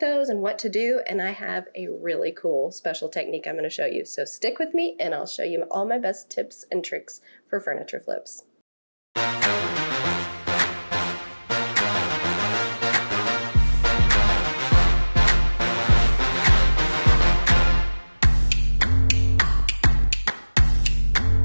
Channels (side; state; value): both; inverted; correlation -1.00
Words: and what to do, and I have a really cool special technique I'm going to show you. So stick with me, and I'll show you all my best tips and tricks for furniture flips.